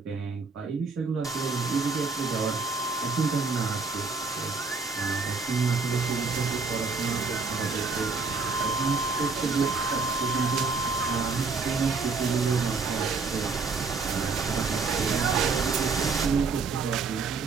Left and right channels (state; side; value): quieter; left; 4.4 dB